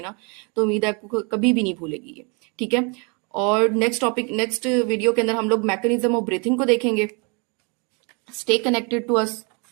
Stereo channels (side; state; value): left; quieter; 33.0 dB